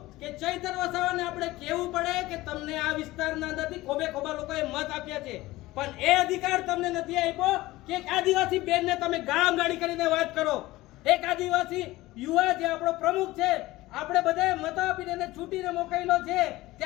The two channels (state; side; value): quieter; right; 18.3 dB